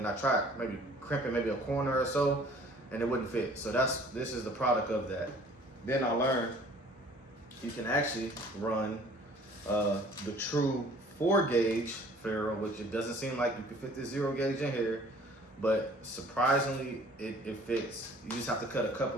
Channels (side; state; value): both; normal; correlation 0.52